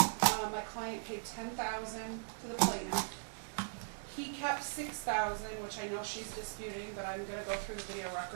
my client paid $10,000 to the plaintiff. He kept $6,000, which I know she's disputing, but I'm going to go through the video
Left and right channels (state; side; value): silent; left; digital silence